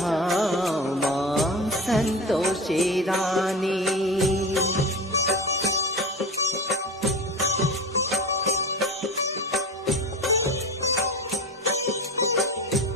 माँ संतोषी रानी।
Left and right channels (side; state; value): both; normal; correlation 0.30